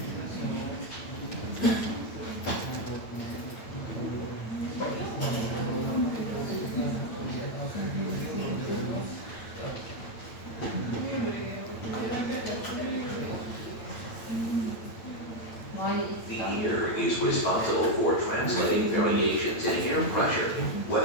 The ear is responsible for translating variations in air pressure,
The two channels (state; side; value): late; right; 8.9 ms